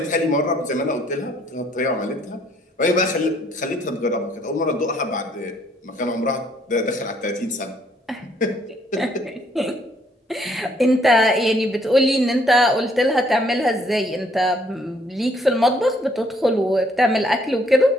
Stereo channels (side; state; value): both; normal; correlation 0.66